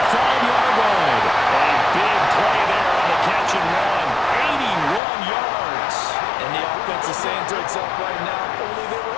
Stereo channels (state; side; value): drops out; right; at 5.0 s